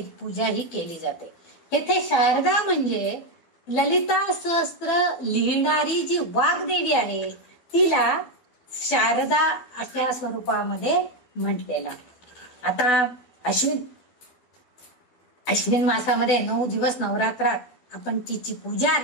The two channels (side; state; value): right; late; 12 ms